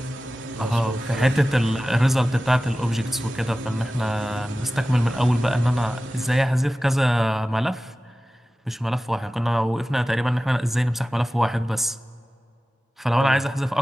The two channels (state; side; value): normal; both; correlation 0.96